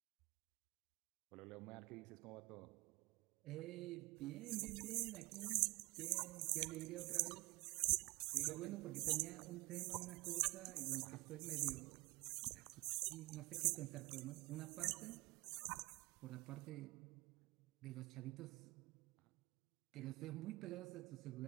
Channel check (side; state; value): left; quieter; 22.8 dB